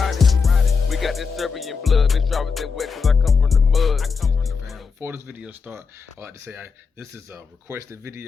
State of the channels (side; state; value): right; quieter; 5.2 dB